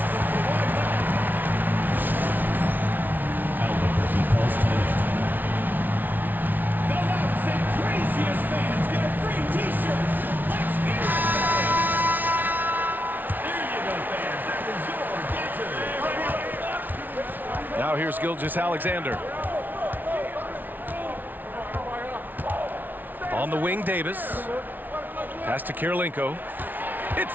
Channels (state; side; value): late; left; 0.085 ms